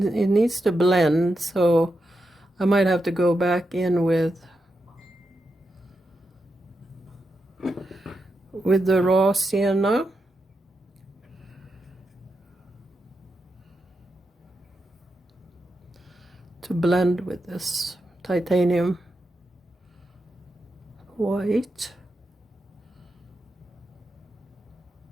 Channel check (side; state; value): both; normal; correlation 0.86